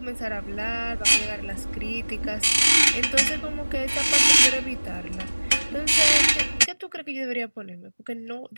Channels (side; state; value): both; inverted; correlation -1.00